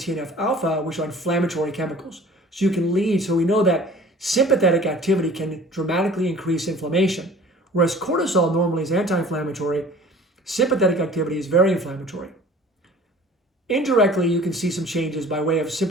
which are inflammatory chemicals. So we know that sympathetic activity can dramatically increase inflammation. Whereas cortisol normally is anti-inflammatory, sympathetic activity is very inflammatory. Indirectly, you can see some changes by way of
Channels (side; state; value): both; normal; correlation 0.47